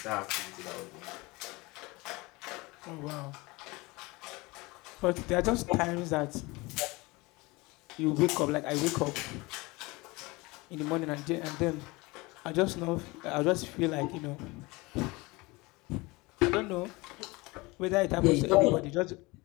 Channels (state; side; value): quieter; right; 23.6 dB